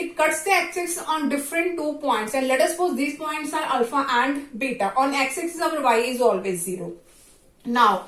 cuts the x-axis on different 2 points, and let us suppose these points are alpha and beta. On x-axis our y is always 0. Now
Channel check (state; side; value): identical; both; correlation 1.00